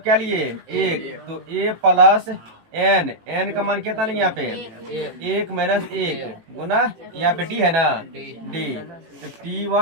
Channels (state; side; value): late; left; 18 ms